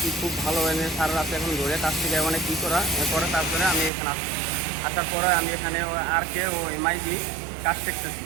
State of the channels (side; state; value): left; drops out; at 3.9 s